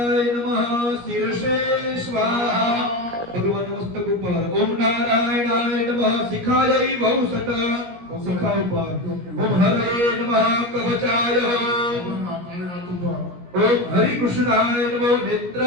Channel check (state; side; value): late; left; 17 ms